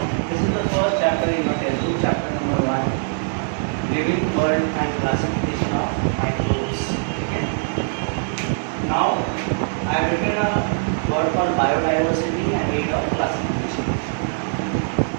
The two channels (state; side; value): silent; left; digital silence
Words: this is the first chapter in your textbook, chapter number 1, living world and classification of microbes. Okay. Now, I have written a word called biodiversity and rate of classification.